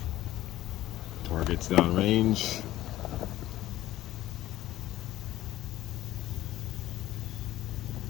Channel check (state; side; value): quieter; right; 14.8 dB